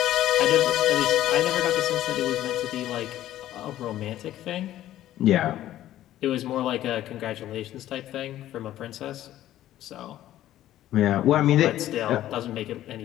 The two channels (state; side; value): quieter; right; 13.2 dB